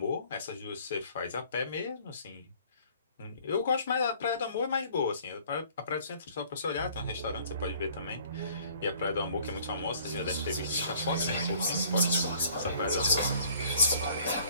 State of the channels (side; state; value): both; inverted; correlation -0.55